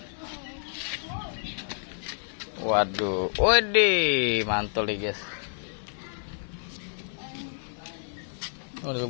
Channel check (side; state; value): right; silent; digital silence